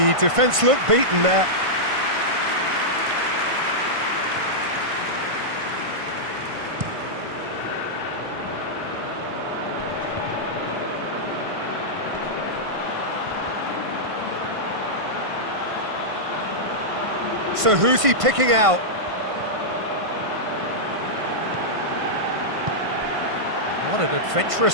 defence looked beaten there. So who's he picking out? What an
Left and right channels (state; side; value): late; left; 1.5 ms